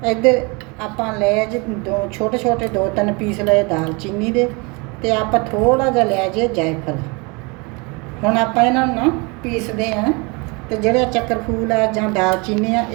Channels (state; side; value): quieter; left; 29.2 dB